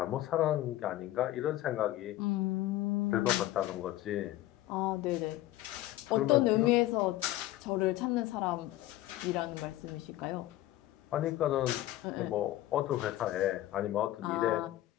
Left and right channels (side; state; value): right; quieter; 15.3 dB